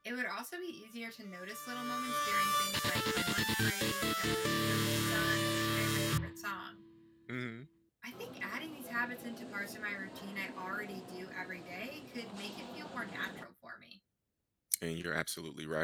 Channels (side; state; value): both; identical; correlation 1.00